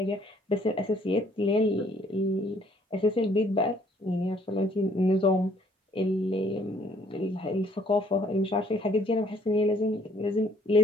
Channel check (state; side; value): normal; both; correlation 0.62